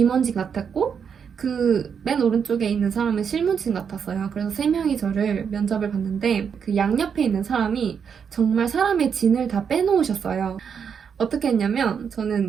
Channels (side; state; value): left; quieter; 7.0 dB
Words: 같았고 그 맨 오른쪽에 있는 사람은 실무진 같았어요. 그래서 3명이 저를 면접을 봤는데 그 양옆에 있는 사람이 정말 사람의 진을 다 빼놓으셨어요. 어떻게 했냐면